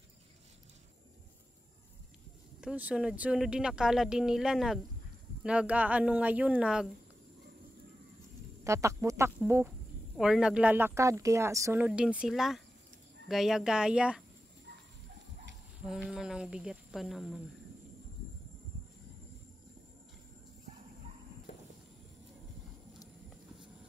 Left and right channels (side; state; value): both; normal; correlation 0.92